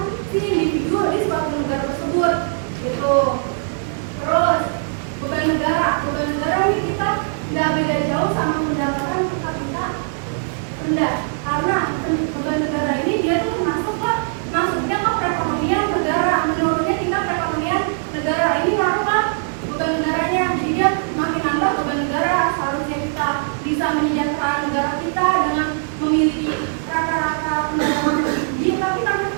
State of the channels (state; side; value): silent; left; digital silence